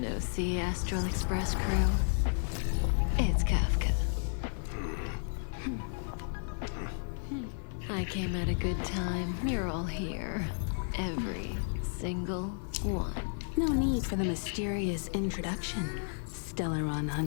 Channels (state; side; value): silent; right; 56 dB below the other